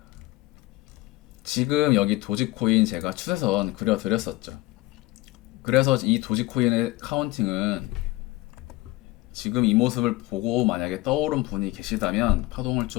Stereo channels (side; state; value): right; quieter; 19.1 dB